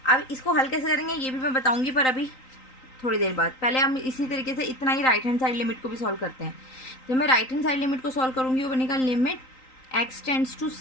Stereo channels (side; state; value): right; late; 3.9 ms